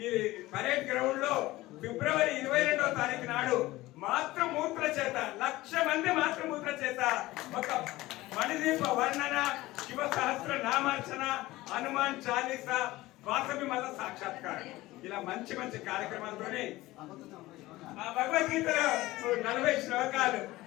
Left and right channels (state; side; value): quieter; right; 18.3 dB